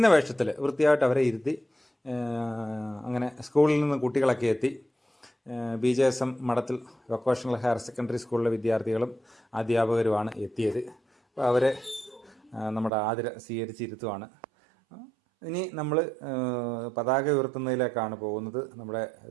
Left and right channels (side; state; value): left; drops out; at 12.9 s